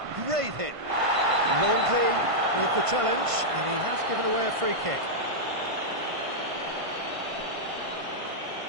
Great hit. Longley with the challenge, and he has given away a free kick.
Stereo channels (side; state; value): left; late; 1.5 ms